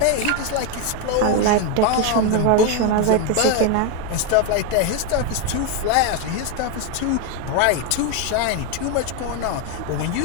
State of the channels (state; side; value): different; both; correlation 0.02